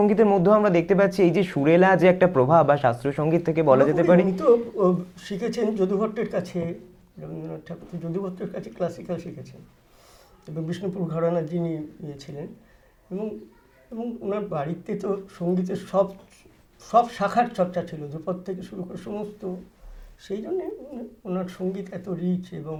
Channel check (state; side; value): identical; both; correlation 1.00